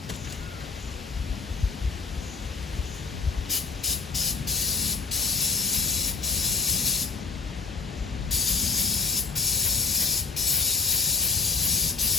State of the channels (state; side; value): quieter; right; 4.6 dB